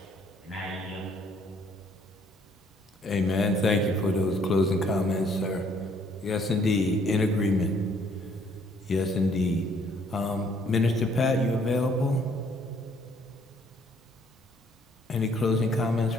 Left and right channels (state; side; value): normal; both; correlation 0.64